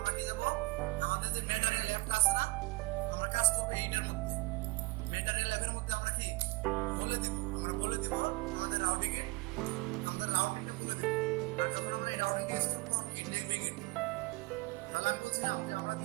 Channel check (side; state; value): left; quieter; 24.2 dB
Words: আমরা কি যাব, আমাদের যে ম্যাটেরিয়াল অ্যাপটা আছে না, আমরা কাজ করবো এইটার মধ্যে। ম্যাটেরিয়াল অ্যাপের মধ্যে আমরা কি বলে দিব, আমাদের রাউটিংটা বলে দিব। আর যখন আমরা এই রাউটিংটা ইউজ করবো তখন কি নেভিগেট করবো। তাহলে আমি বলছিলাম যে আমরা